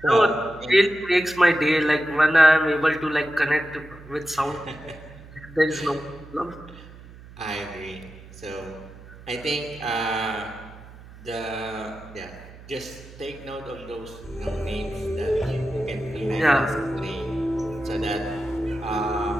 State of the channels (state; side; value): noise; right; hum, 19 dB below the sound